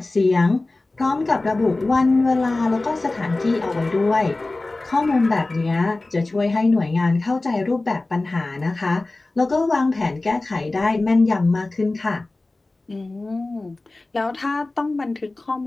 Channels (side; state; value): right; quieter; 3.1 dB